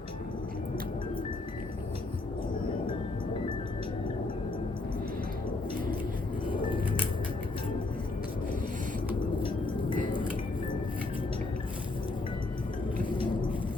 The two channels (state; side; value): quieter; right; 3.1 dB